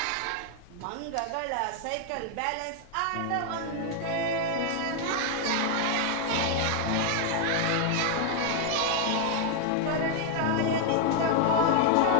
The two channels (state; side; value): different; both; correlation 0.00